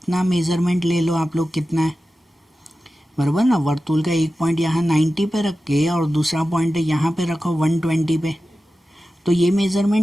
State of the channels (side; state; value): both; normal; correlation 0.94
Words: मेज़रमेंट ले लो आप लोग, कितना है बराबर ना। वर्तुल का एक पॉइंट यहाँ 90 पे रख के और दूसरा पॉइंट यहाँ पे रखो 120 पे। तो ये